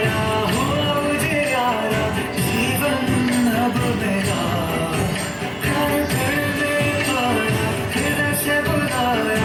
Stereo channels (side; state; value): both; identical; correlation 1.00